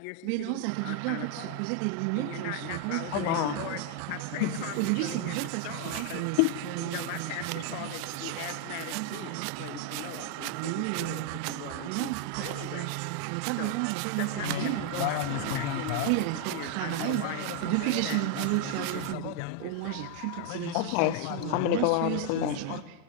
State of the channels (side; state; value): both; different; correlation 0.00